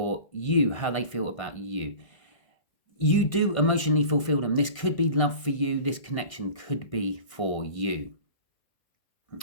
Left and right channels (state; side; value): late; right; 1.6 ms